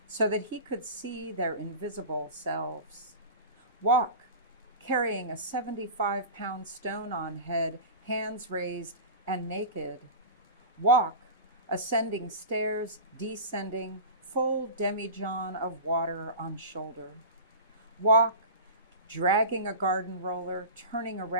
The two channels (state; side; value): inverted; both; correlation -0.32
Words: so that he could see their invisible selves. Walk, carrying a 75-pound stone on head, hands raised and naked. Walk, ascending stairs, descending, full demijohn of water on shoulder. Walk, dragging a garden roller, turning